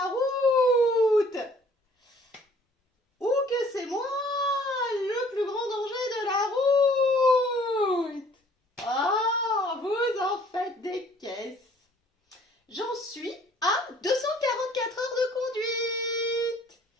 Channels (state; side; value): normal; both; correlation 0.56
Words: route. Ou que c'est moi le plus grand danger de la route. Ah, vous en faites des caisses. J'en suis à 244 heures de conduite.